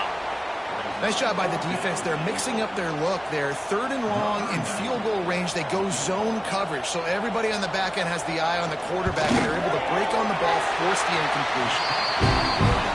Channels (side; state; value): both; identical; correlation 1.00